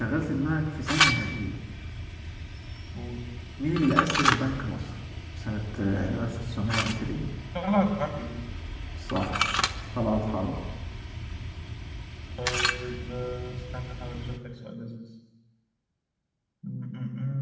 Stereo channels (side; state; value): both; identical; correlation 1.00